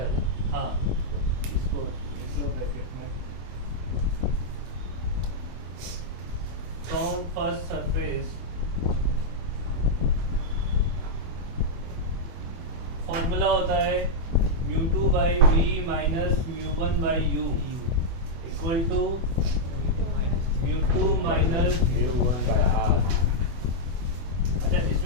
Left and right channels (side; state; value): left; late; 24 ms